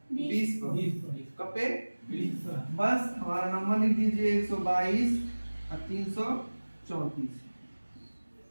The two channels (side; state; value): both; inverted; correlation -1.00